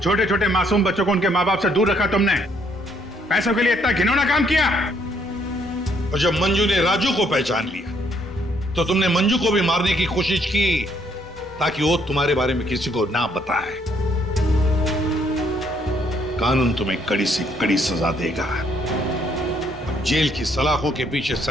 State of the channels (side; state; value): both; normal; correlation 0.68